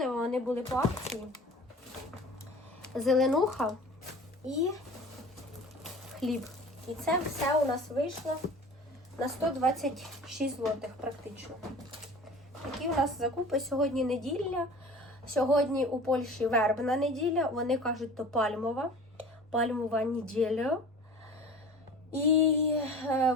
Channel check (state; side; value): normal; both; correlation 0.41